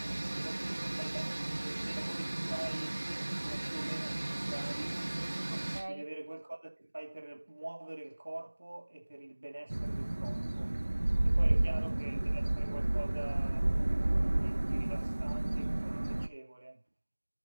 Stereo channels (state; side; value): inverted; both; correlation -1.00